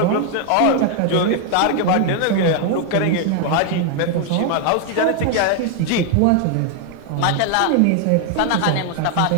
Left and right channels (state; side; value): different; both; correlation 0.00